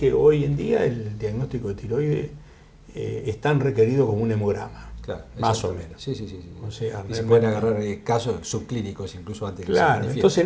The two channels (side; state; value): both; identical; correlation 1.00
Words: hoy en día el diagnóstico de tiroides es tan requerido como un hemograma. Claro, Más o exactamente. menos. Sí, sí, sí. O sea, y se realmente- pueden agarrar casos subclínicos incluso antes que se Claro, manifieste. entonces